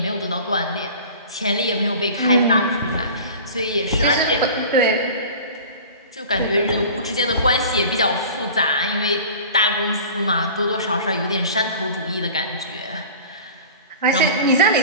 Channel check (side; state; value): both; inverted; correlation -0.40